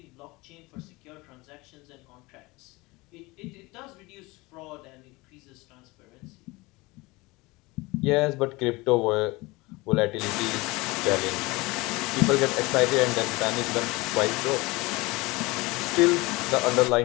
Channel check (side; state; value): right; quieter; 23.0 dB